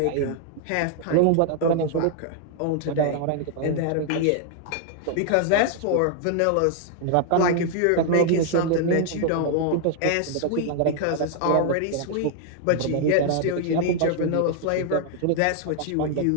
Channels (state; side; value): different; both; correlation 0.00